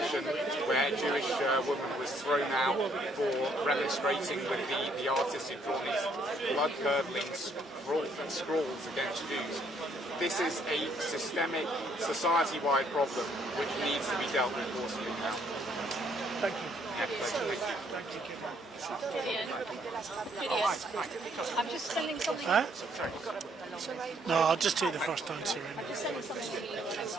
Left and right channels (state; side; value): normal; both; correlation 0.68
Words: where a Jewish woman was thrown out for remonstrating with the artist who drawn these blood-curdling scrawls against Jews. This is a systemic, society-wide problem which needs to be dealt with forcefully now. Thank you. I'm just sending something. Huh? No, I'll just take the first answer anyway.